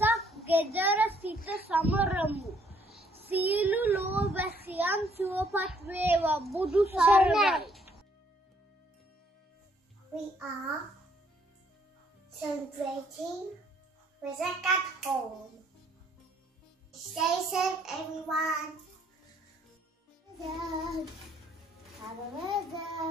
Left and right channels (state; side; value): normal; both; correlation 0.66